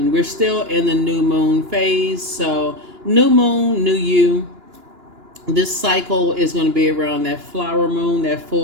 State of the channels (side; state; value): left; late; 2.9 ms